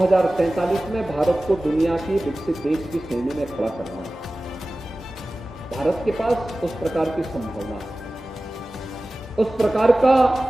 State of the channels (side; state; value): both; normal; correlation 0.97